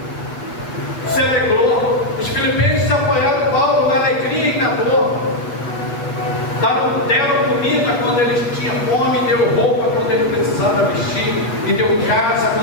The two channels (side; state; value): right; late; 8.3 ms